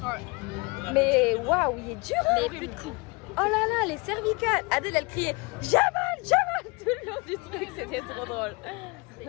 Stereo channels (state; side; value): quieter; right; 28.0 dB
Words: Mais waouh, il est dur. Mais plus de coups. Oh là là, les cervicales. Adèle, elle criait Jamal tout le long du truc, c'était trop drôle.